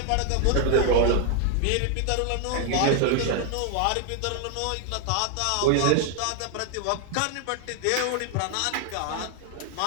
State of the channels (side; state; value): both; different; correlation 0.00